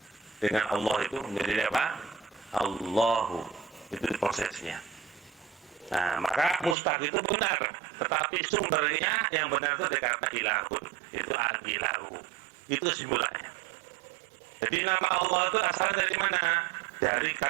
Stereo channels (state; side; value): drops out; left; at 6.8 s